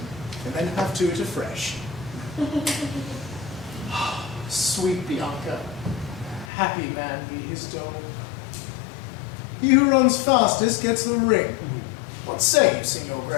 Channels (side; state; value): right; drops out; at 6.5 s